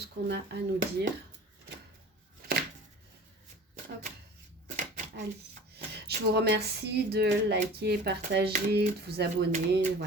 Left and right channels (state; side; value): normal; both; correlation 0.42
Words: qu'on a à nous dire. Hop, allez. Je vous remercie de liker, partager, de vous abonner,